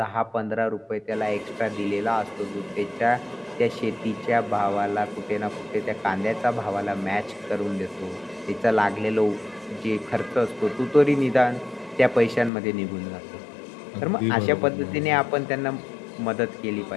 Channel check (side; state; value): right; drops out; at 12.5 s